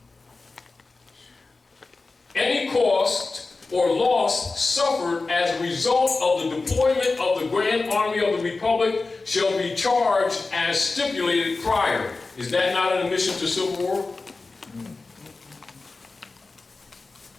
or loss suffered as a result of the deployment of the Grand Army of the Republic shall be charged as stipulated prior. Is that not an admission to civil war?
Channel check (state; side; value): quieter; right; 3.7 dB